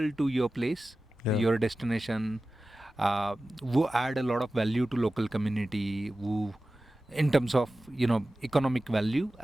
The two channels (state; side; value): normal; both; correlation 0.95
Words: to your place, Yeah. your destination, who add a lot of value to local community, who in terms of economic value